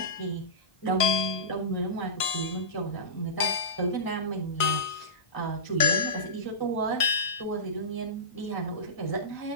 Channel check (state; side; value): late; right; 1.5 ms